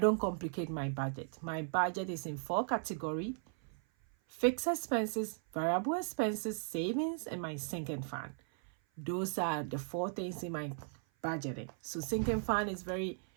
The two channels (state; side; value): silent; left; 53 dB below the other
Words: complicate my budget. My budget is in 4 categories: fixed expenses, variable expenses, savings, and my sinking fund. Those are the 4 things in my budgeting. So sinking fund is very